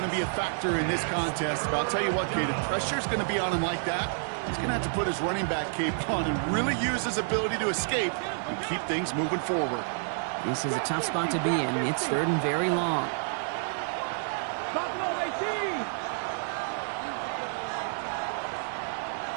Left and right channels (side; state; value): left; silent; 58 dB below the other